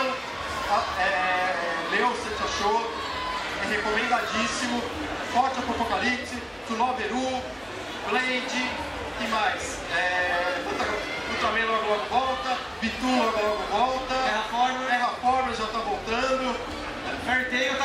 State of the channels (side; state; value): both; identical; correlation 1.00